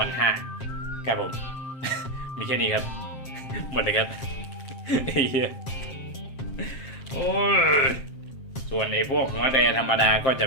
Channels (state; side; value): late; right; 7.6 ms